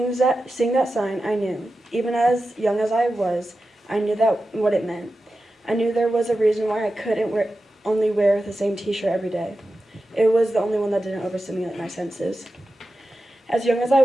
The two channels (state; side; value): normal; both; correlation 0.92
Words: that sign, I knew. Even as young as I was, I knew what it meant. I knew there was a reason why I couldn't only wear the same t-shirt every day. It was the only one that didn't overstimulate my senses. As young as I